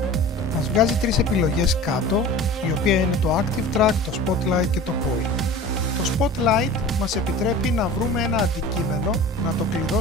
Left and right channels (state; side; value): normal; both; correlation 0.39